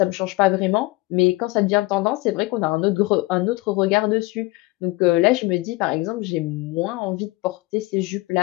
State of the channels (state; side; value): quieter; right; 21.4 dB